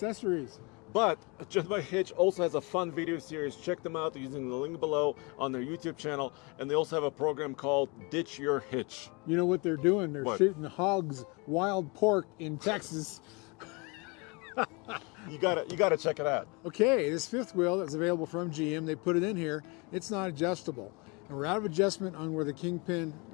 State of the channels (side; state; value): right; quieter; 29.1 dB